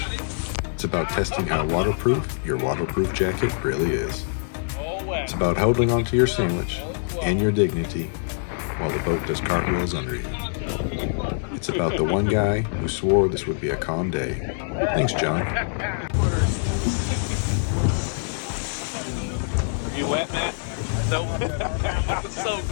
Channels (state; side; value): silent; right; digital silence